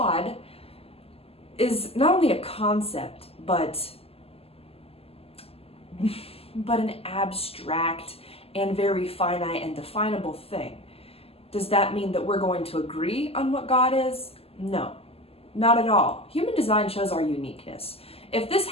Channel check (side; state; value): right; late; 0.29 ms